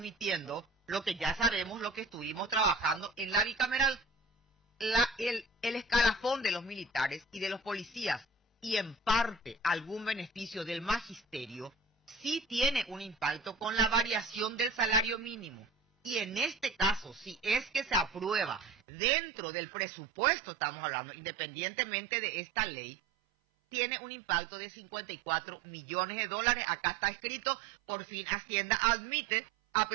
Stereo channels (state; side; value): drops out; left; at 18.8 s